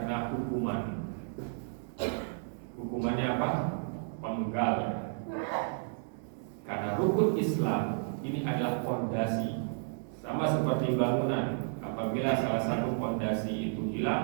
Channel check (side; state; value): left; silent; digital silence